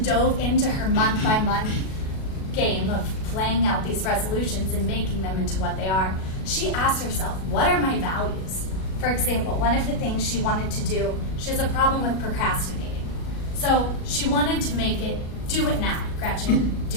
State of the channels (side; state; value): right; late; 37 ms